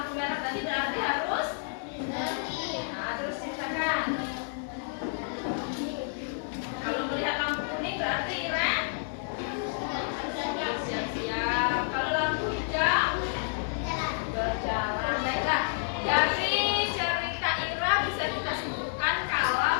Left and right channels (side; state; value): right; silent; digital silence